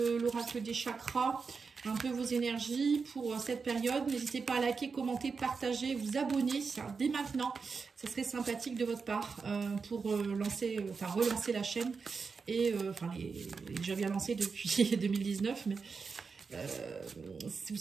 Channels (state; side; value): quieter; left; 5.0 dB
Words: des chakras un peu vos énergies pour cette période. N'hésitez pas à liker, commenter, partager, vous abonner dès maintenant. Ça serait sympathique de votre part pour relancer la chaîne. Et déjà bien lancé depuis 2019, mais vous